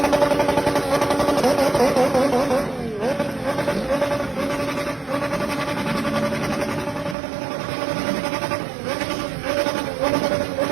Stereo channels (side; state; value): left; drops out; at 7.2 s